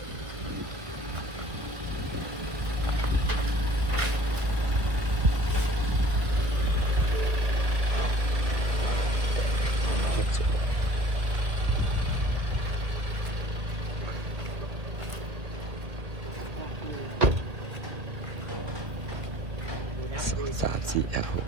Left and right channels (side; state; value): left; late; 1.5 ms